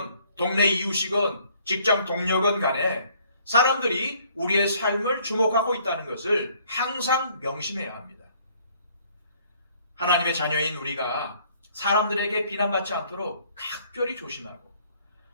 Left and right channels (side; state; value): both; inverted; correlation -0.61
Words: 동네 이웃이건 직장 동료건 간에 사람들이 우리의 삶을 주목하고 있다는 것을 항상 명심해야 합니다. 하나님의 자녀인 우리가 사람들에게 비난받지 않도록 각별히 조심하고